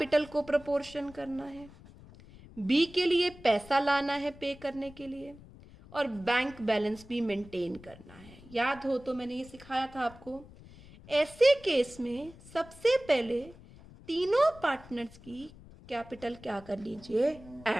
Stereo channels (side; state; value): left; noise; rumble, 20 dB below the sound